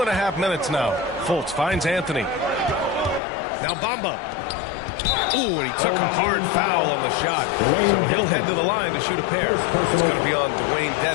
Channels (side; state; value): right; drops out; at 3.2 s